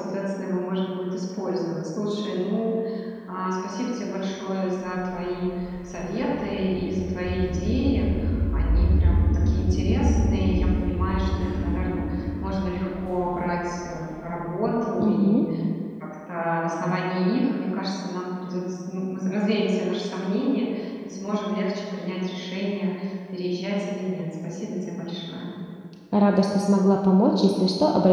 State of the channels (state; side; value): identical; both; correlation 1.00